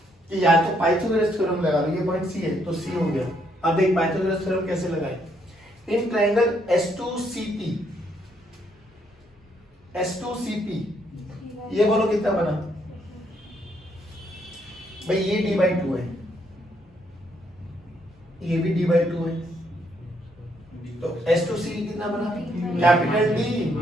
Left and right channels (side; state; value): both; normal; correlation 0.72